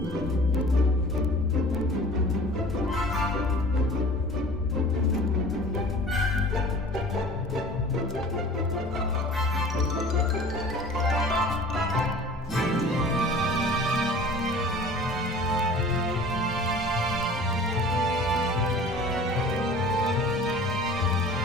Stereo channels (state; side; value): normal; both; correlation 0.44